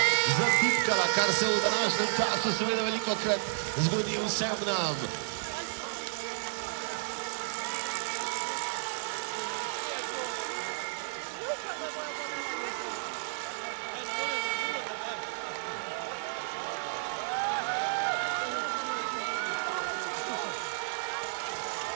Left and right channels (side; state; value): left; silent; 56 dB below the other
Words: zatipkala, kar se v današnjem času seveda velikokrat zgodi vsem nam.